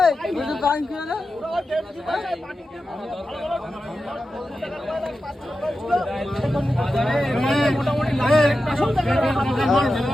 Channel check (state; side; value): normal; both; correlation 0.91